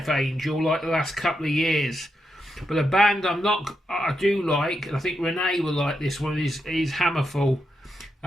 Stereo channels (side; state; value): both; normal; correlation 0.84